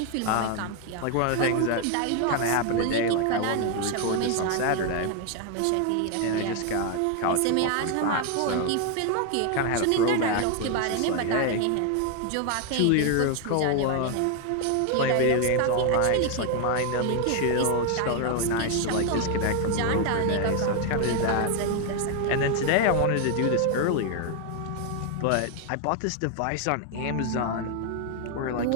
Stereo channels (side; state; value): both; different; correlation 0.01